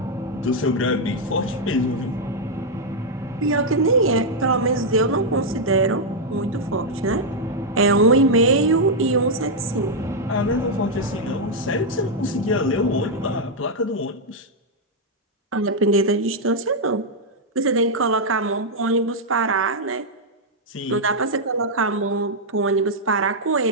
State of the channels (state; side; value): normal; both; correlation -0.02